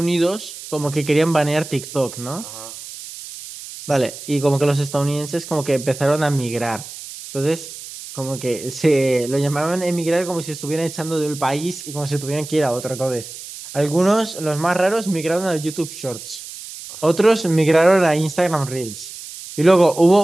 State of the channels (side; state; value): right; noise; hiss, 13 dB below the sound